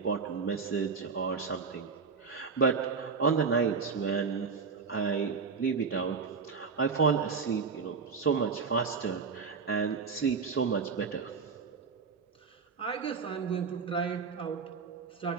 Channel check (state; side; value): quieter; left; 5.3 dB